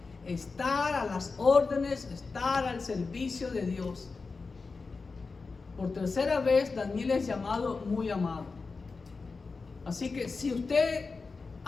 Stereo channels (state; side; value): quieter; right; 4.3 dB